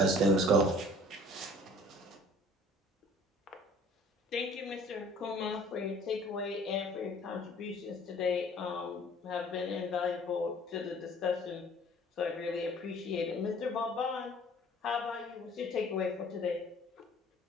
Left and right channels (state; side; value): normal; both; correlation 0.52